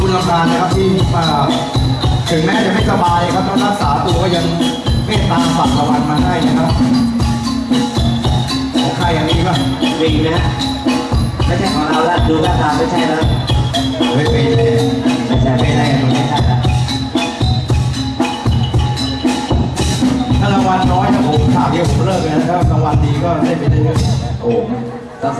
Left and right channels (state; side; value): identical; both; correlation 1.00